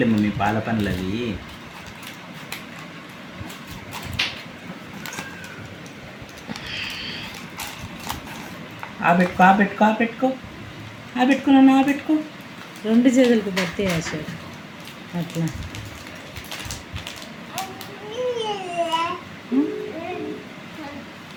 మమ్మీ పాల పనులు అవి. పెట్టుకున్నాను పెట్టుకో. రెండు చేతులకు పడితే ఆశ అట్లా.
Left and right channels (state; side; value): identical; both; correlation 1.00